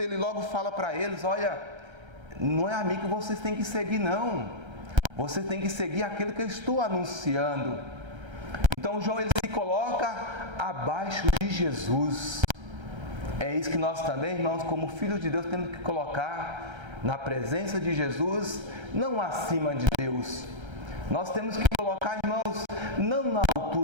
ele logo fala para eles: olha, não é a mim que vocês têm que seguir, não. Vocês têm que seguir aquele que eu estou anunciando. Então João, ele se coloca abaixo de Jesus. É isso que nós também, irmãos, como filhos de Deus, temos que colocar na presença de Jesus, não acima de Deus. Nós temos que colocar, irmãos, não na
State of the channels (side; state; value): left; late; 1.3 ms